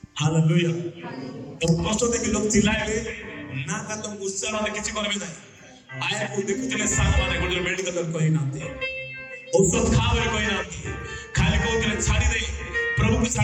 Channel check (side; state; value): both; identical; correlation 1.00